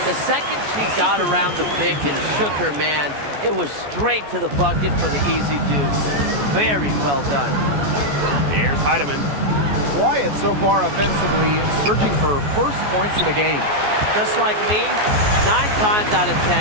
The second she got around the pick and shook her man, it was straight to the bucket for the easy deuce. Very well done. Here's Heidemann. Quiet so far offensively, searching for first points of the game. Just like me, 9 times out of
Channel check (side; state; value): left; late; 14 ms